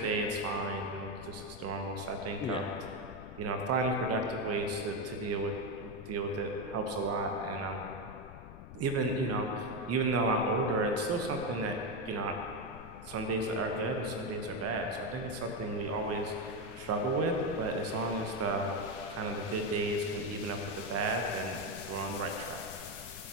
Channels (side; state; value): left; noise; rumble, 14 dB below the sound